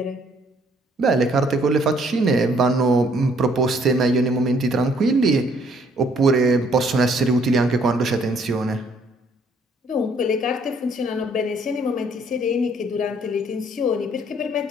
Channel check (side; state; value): both; normal; correlation 0.64